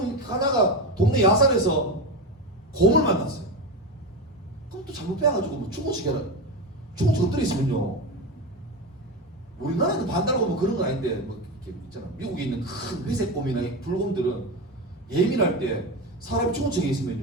가다가 동네 야산에서 곰을 만났어요. 그럼 또 잘못 빼가지고 뭐 중고치기 엎드려 있으면요. 우리나라는 반달곰 뭐 그런 건 아닌데 뭐 이렇게 있잖아. 미국에 있는 큰 회색 곰이나 불곰들은 예민할 때 사람이 중고치기에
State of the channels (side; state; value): both; normal; correlation 0.18